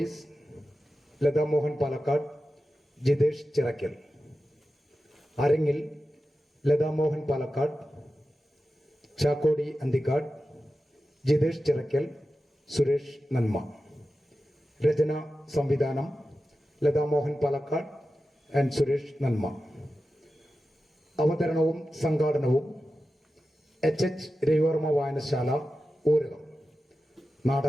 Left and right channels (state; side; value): normal; both; correlation 0.93